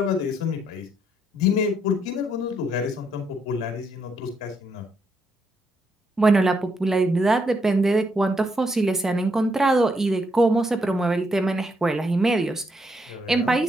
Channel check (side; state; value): both; normal; correlation 0.76